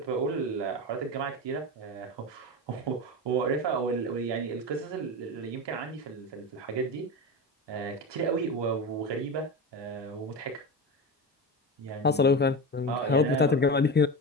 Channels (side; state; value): both; normal; correlation 0.23